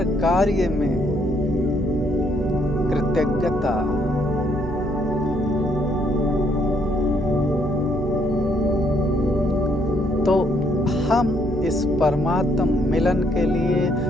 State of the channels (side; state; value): both; normal; correlation 0.70